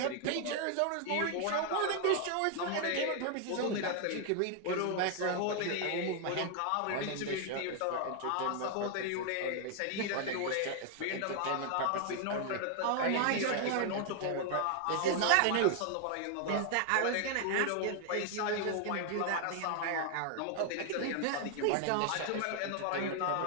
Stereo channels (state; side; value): different; both; correlation 0.00